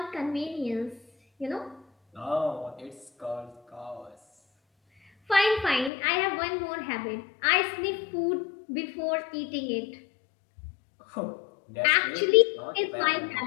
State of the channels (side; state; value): right; drops out; at 5.9 s